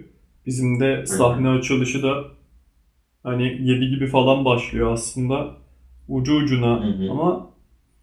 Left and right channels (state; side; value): identical; both; correlation 1.00